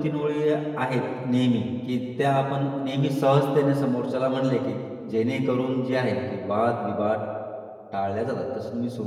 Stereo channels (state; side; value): identical; both; correlation 1.00